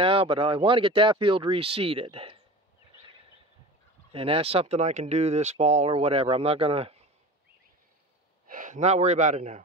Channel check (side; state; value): both; normal; correlation 0.34